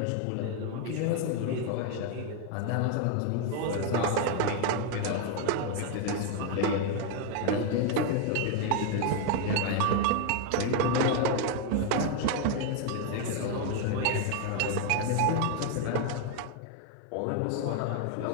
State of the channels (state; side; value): different; both; correlation 0.01